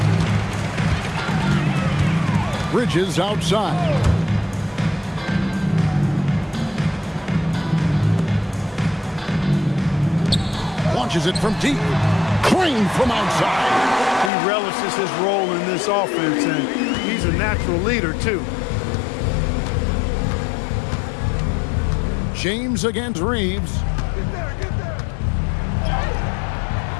Bridges outside. Launches it from deep. Clean from outside. He relishes his role in this offense, and he's a natural leader, too. James against Reeves.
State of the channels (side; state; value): right; drops out; at 14.3 s